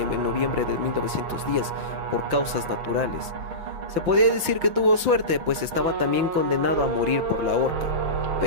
noviembre de 1910 por causas naturales. Se podía decir que tuvo suerte, pues estaba también condenado a morir por la horca.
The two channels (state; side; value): late; left; 5.8 ms